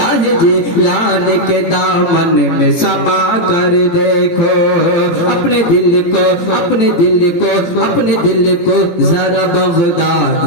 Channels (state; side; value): late; right; 17 ms